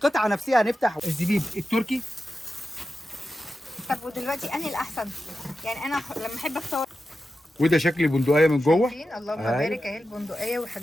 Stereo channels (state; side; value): normal; both; correlation 0.91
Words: نفسها هنفتح الزبيب التركي. طب ودلوقتي انهي الاحسن؟ يعني انا لما احب اختار. وده شكل البندقيه من جوه. اللهم بارك اهي البندقيه،